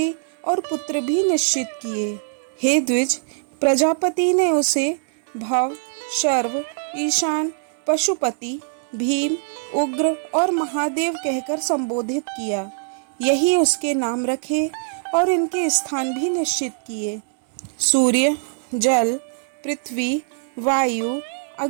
और पुत्र भी निश्चित किए। हे द्विज, प्रजापति ने उसे भव, शर्व, ईशान, पशुपति भीम, उग्र और महादेव कहकर संबोधित किया। यही उसके नाम रखे और इनके स्थान भी निश्चित किए। सूर्य, जल, पृथ्वी, वायु,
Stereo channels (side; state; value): left; silent; digital silence